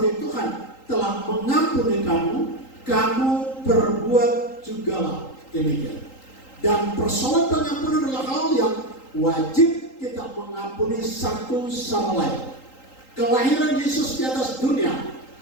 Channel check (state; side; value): late; right; 3.8 ms